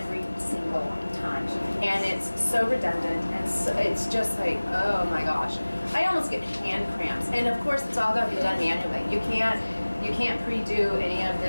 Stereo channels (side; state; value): both; inverted; correlation -1.00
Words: single time. And it's so redundant, and so, it's just like, oh my gosh. I almost get hand cramps. And of course, it's all got to be done manually. You can't pre-do any of